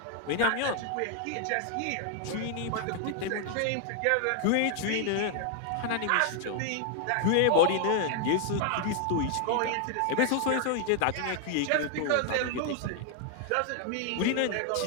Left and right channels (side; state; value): both; different; correlation 0.00